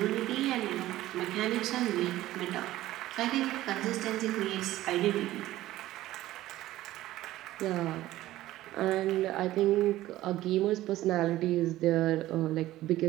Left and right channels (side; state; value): left; quieter; 15.5 dB